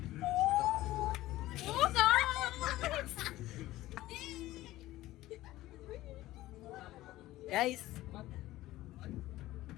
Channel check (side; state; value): right; quieter; 16.3 dB